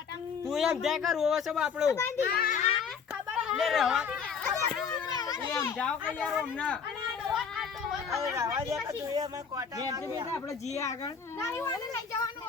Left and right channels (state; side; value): quieter; right; 6.3 dB